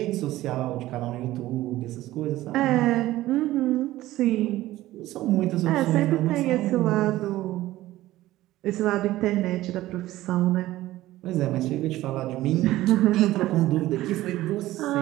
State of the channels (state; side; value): quieter; left; 15.9 dB